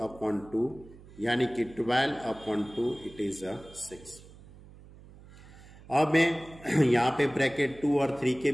अपॉन 2 यानी कि 12 अपॉन 2 इट इज 6। अब मैं यहाँ पे ब्रैकेट 2 और 3 के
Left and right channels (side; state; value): right; noise; hum, 20 dB below the sound